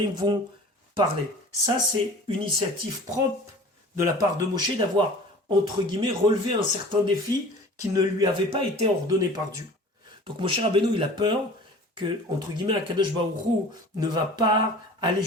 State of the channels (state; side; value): normal; both; correlation 0.43